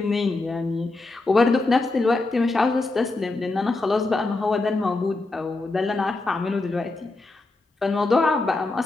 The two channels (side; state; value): right; quieter; 3.2 dB